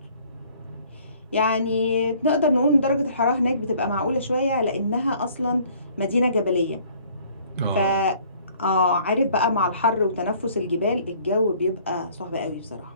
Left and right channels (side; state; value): both; inverted; correlation -0.57